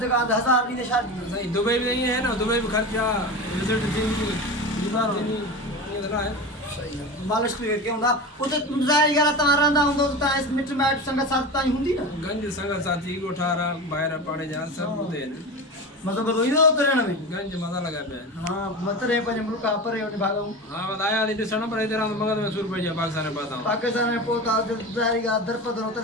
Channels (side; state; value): both; normal; correlation 0.27